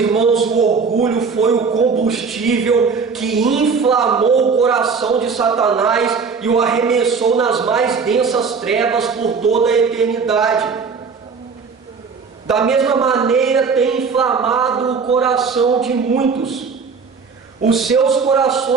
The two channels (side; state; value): left; quieter; 5.3 dB